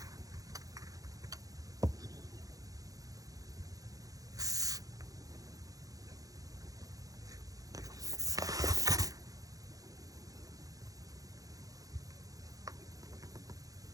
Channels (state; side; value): late; left; 0.17 ms